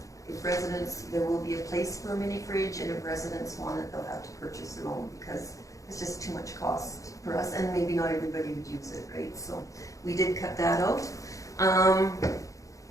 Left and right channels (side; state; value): right; late; 0.16 ms